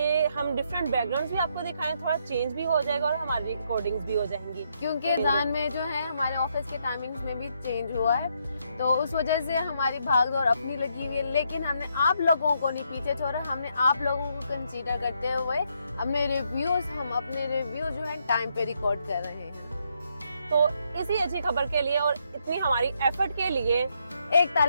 हम डिफरेंट बैकग्राउंड्स भी आपको दिखाएं, थोड़ा चेंज भी हो जाएगा और हमारी रिकॉर्डिंग्स भी हो जाएंगी। क्योंकि रमजान में जो है हमारे ऑफिस के टाइमिंग्स में भी चेंज हुआ है, तो उस वजह से हमारी भागदौड़ अपनी लगी हुई है। लेकिन हमने आप लोगों को नहीं पीछे छोड़ा, हमने आप लोगों को कंसीडर करते हुए अपने रिव्यू जो है टाइम पे रिकॉर्ड कर रहे हैं। तो इसी अच्छी खबर के लिए और इतनी हमारी एफर्ट के लिए एक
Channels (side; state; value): both; inverted; correlation -0.75